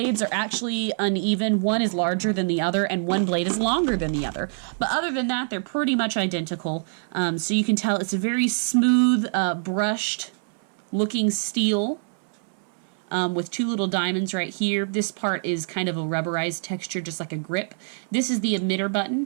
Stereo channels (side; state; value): left; silent; 62 dB below the other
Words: are actually uneven. One is larger than the other, and one blade is longer than the other. But other than that, they're pretty much identical. So you can tell it's a very smooth, brushed looking steel. With two little diamonds right here. This part is kind of a rubberized texture, just like a grip. This is the emitter button